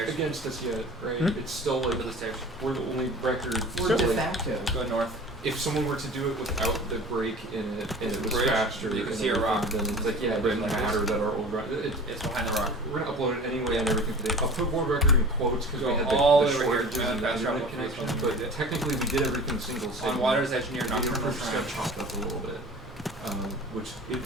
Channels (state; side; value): normal; both; correlation 0.40